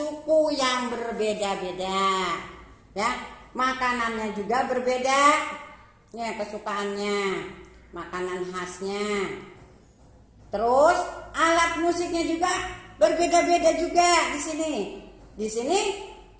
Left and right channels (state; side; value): identical; both; correlation 1.00